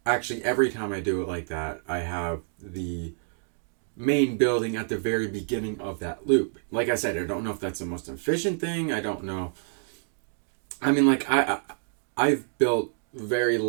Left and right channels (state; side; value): silent; left; digital silence